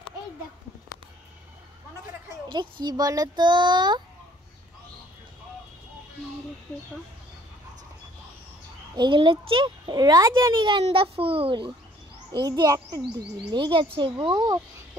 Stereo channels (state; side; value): normal; both; correlation 0.58